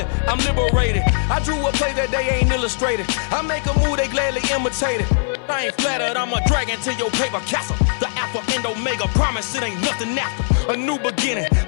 I'm liberated. I drew a play that they ain't illustrated. I make a move, they gladly imitate it. I ain't flattered, I'm a dragon to your paper castle. The Alpha and Omega, promise it ain't nothing after. A new beginning.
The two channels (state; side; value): silent; right; 57 dB below the other